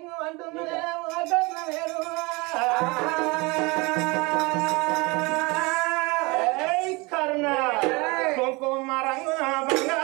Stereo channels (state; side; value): quieter; left; 25.8 dB